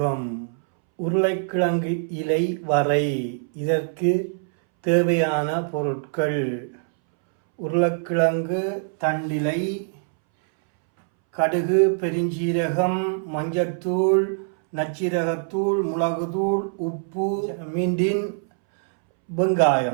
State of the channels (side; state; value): left; silent; 63 dB below the other